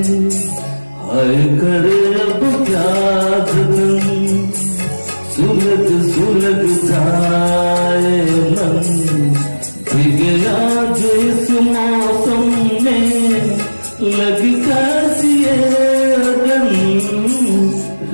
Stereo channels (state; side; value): inverted; both; correlation -1.00